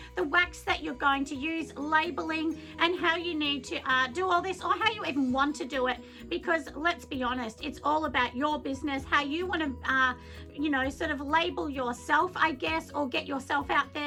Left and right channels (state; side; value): identical; both; correlation 1.00